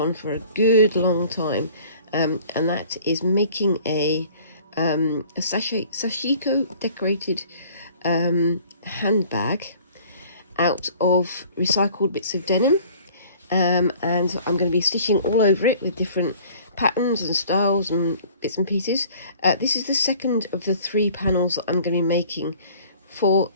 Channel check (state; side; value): inverted; both; correlation -0.51